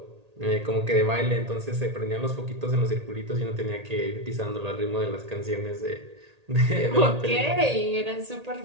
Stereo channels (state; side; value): late; left; 1.8 ms